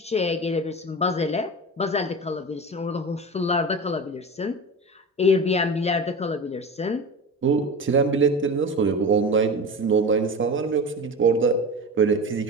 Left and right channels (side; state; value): both; normal; correlation 0.29